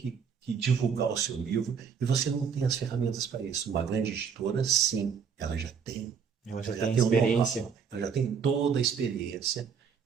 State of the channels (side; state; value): left; quieter; 6.6 dB